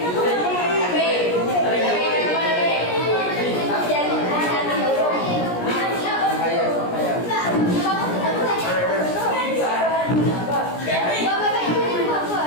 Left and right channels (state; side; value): late; right; 17 ms